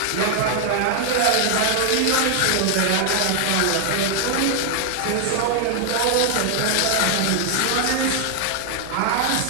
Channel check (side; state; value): both; different; correlation 0.00